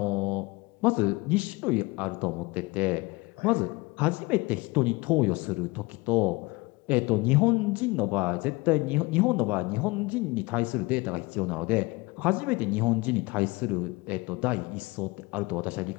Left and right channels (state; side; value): quieter; right; 23.9 dB